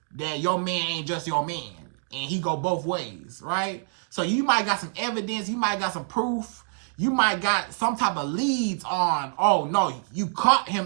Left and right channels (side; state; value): left; silent; 58 dB below the other